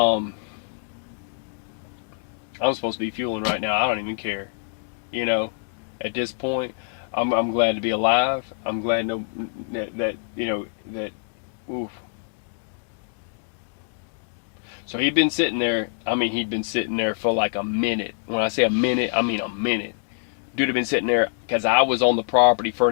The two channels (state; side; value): silent; right; digital silence